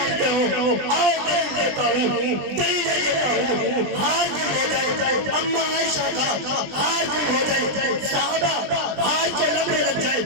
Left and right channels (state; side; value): late; left; 20 ms